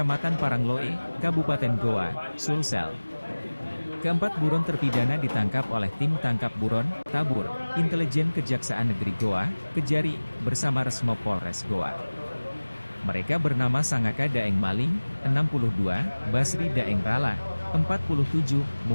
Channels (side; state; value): both; inverted; correlation -1.00